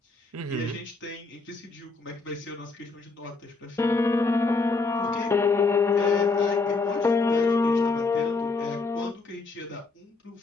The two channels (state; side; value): quieter; right; 3.8 dB